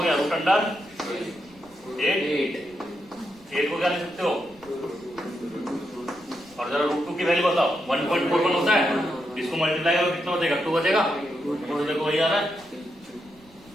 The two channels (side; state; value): right; noise; rumble, 28 dB below the sound